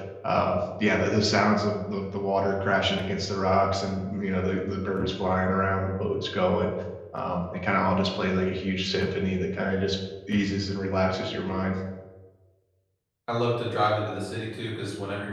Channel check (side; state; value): both; identical; correlation 1.00